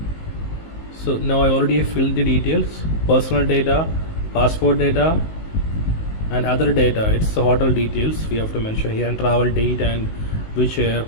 So now I already filled the details, personal data, passport data and other data. It's the hotel details we have to mention here, and travel date and which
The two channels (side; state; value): right; late; 19 ms